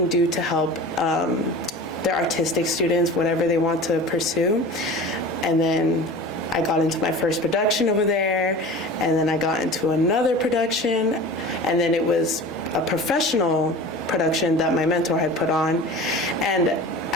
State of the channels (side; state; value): both; normal; correlation 0.36